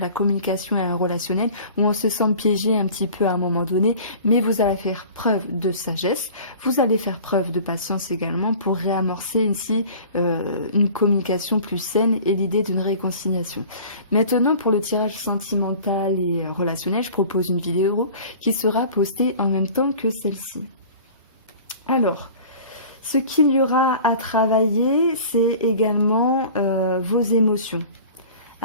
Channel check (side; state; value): both; inverted; correlation -0.43